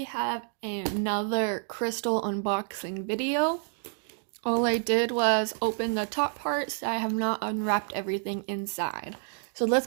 have another crystal unboxing video. All I did was open the top parts. I have not unwrapped everything inside. So let's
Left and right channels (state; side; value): silent; left; 56 dB below the other